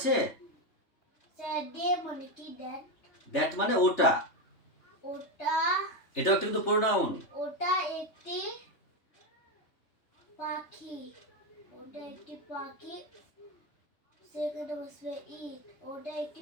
স্যার ডে মানে কি? দ্যাট মানে ওটা, ওটা এটাও কিন্তু প্রোনাউন। ওটা একটি পাখি। ওটা একটি পাখি। সেখানে বসবে ইট। ওটা একটি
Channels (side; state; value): right; late; 3.3 ms